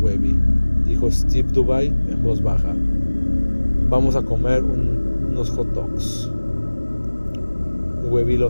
dijo Steve Dubai en voz baja. «Vamos a comer unos hot dogs». Webby lo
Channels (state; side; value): inverted; both; correlation -1.00